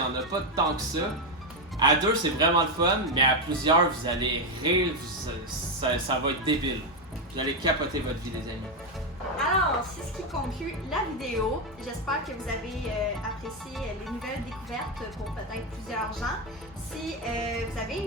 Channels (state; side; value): normal; both; correlation 0.06